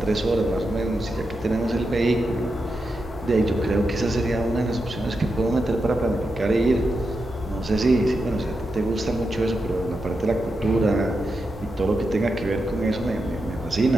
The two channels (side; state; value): both; normal; correlation 0.87